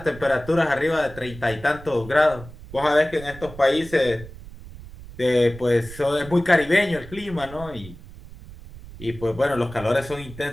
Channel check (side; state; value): right; noise; rumble, 16 dB below the sound